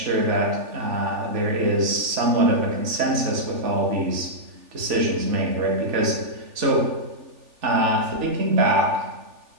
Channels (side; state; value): left; late; 3.4 ms